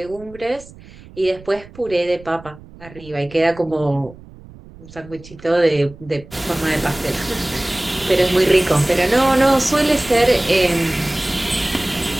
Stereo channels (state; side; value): noise; right; rumble, 20 dB below the sound